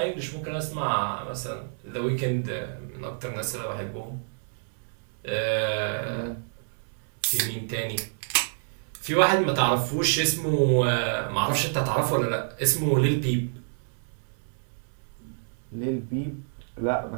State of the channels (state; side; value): silent; left; digital silence